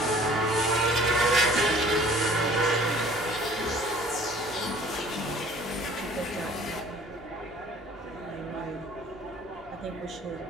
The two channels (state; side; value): normal; both; correlation 0.51